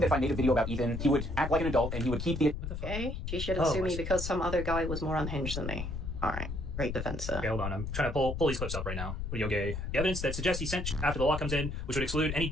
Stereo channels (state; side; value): noise; left; rumble, 5 dB below the sound